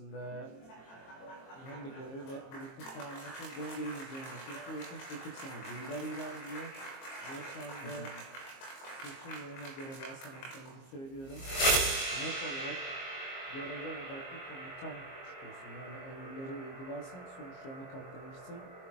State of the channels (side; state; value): right; late; 22 ms